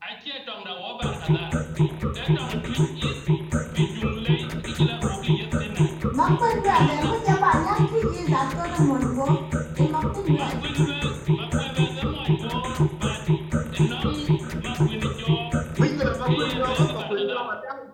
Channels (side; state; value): both; identical; correlation 1.00